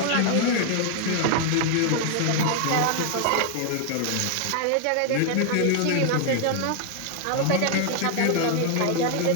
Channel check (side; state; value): both; different; correlation 0.00